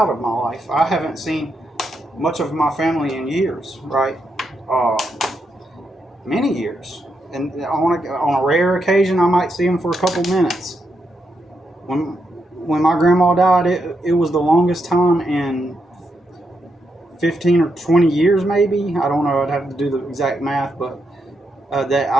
of my life. I haven't seen much of my family in years, right? Many years. And on a rare occasion, I might see them for a couple minutes. When my grandma died, it was the longest time in 15 or 20 years, maybe. I don't know. I'd have to do the exact math, but that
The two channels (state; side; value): normal; both; correlation 0.82